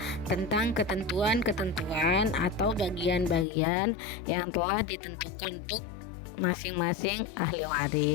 tentang ketentuan-ketentuan atau bagian-bagian yang telah ditentukan untuk masing-masing ahli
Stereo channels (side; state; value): right; drops out; at 3.5 s